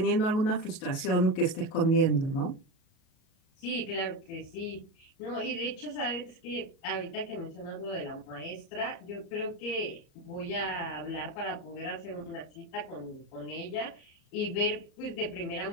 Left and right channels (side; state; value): right; late; 37 ms